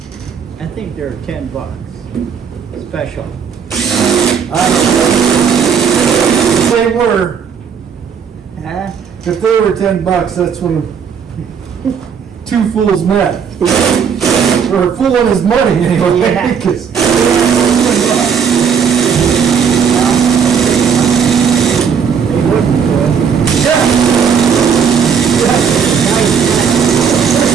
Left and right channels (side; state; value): left; quieter; 6.9 dB